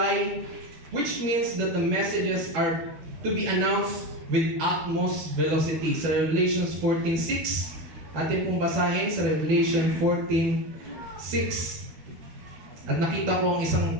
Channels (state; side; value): late; left; 12 ms